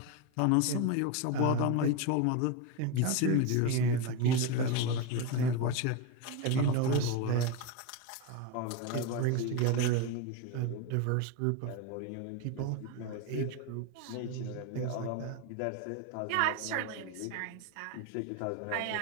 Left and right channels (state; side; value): different; both; correlation 0.03